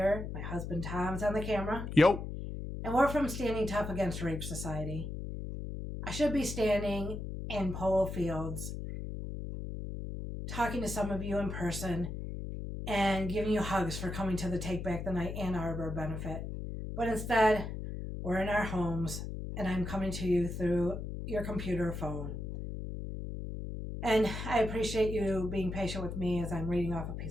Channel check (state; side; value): noise; left; hum, 6 dB below the sound